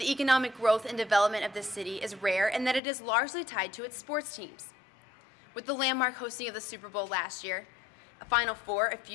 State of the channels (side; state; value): right; drops out; at 2.8 s